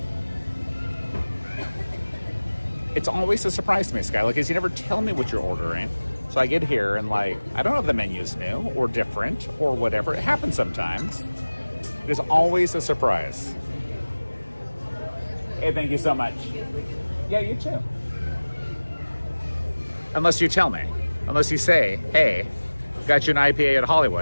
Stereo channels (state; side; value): inverted; both; correlation -1.00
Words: It's always a surprise to me, Skyla, because you never tell me what you're ordering. So I get here and like, I don't know if the menu's new or different or whatever. It happens sometimes. There's always a surprise. Hey, thank you so much. Yeah, you too. Unless you tell me. Unless you say, hey, got you an IPA at